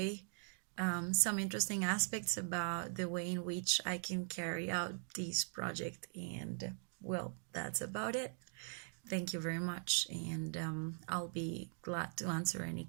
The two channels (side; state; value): left; silent; 50 dB below the other